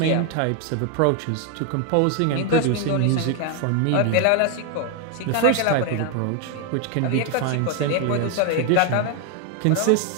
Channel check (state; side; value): different; both; correlation 0.01